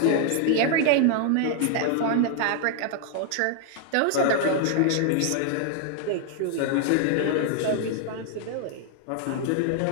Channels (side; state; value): both; different; correlation 0.00